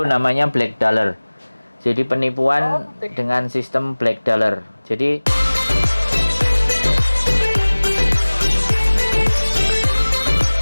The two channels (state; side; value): inverted; both; correlation -1.00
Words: namanya black dollar. Jadi penipuan dengan sistem black dollar. Jadi